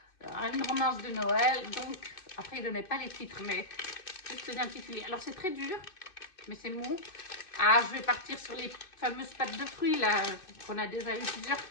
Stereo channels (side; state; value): right; late; 2.6 ms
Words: Une romance de Noël. Donc, après, il ne donnait pas les titres, mais juste l'intitulé. Alors, c'est très dur, mais c'est mou. Ah, je vais partir sur les fameuses pâtes de fruits, là, qu'on a déjà eu plusieurs